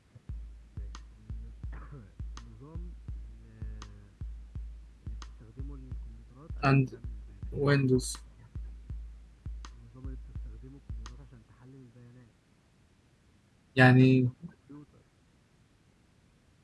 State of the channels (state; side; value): identical; both; correlation 1.00